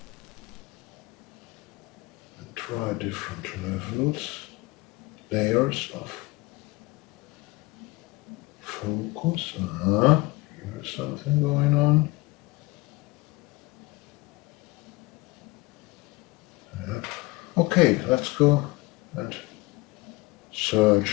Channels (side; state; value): right; quieter; 21.6 dB